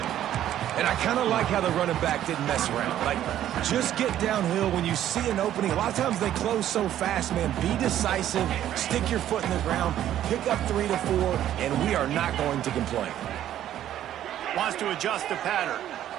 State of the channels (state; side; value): quieter; left; 11.8 dB